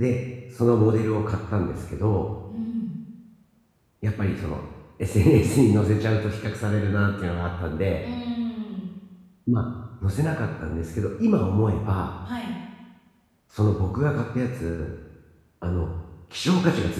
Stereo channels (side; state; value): both; identical; correlation 1.00